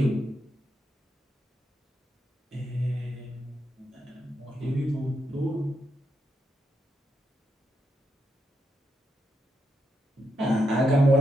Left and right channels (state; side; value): normal; both; correlation 0.81